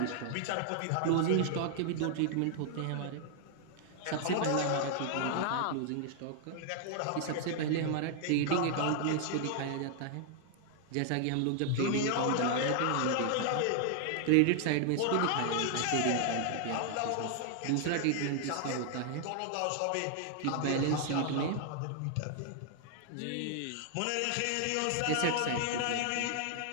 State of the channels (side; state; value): both; different; correlation 0.00